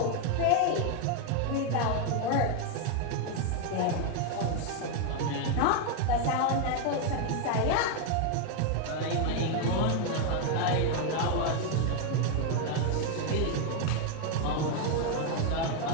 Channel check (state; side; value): different; both; correlation 0.01